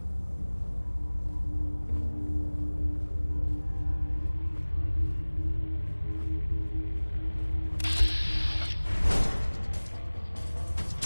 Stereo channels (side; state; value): both; inverted; correlation -1.00